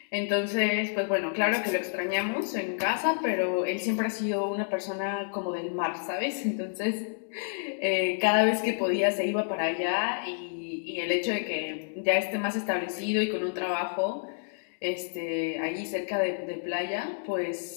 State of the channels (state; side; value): silent; right; digital silence